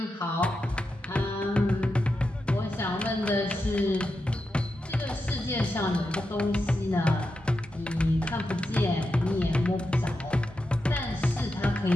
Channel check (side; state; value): both; normal; correlation 0.88